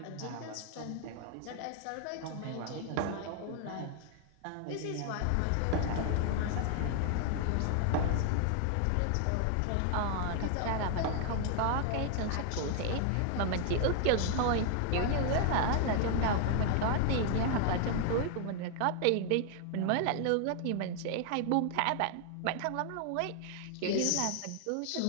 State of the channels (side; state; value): both; different; correlation 0.00